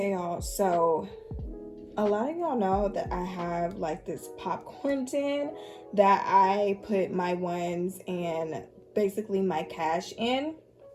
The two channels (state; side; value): identical; both; correlation 1.00